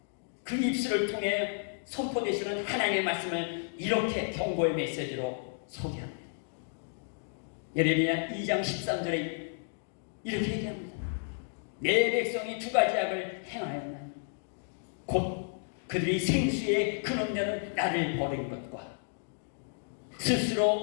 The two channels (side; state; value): right; silent; digital silence